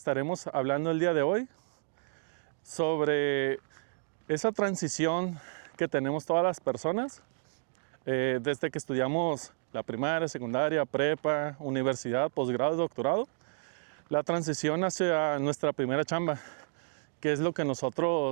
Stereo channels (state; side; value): silent; left; digital silence